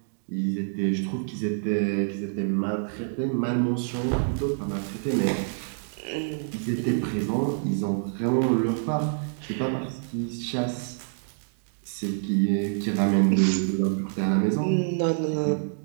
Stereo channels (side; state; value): left; silent; digital silence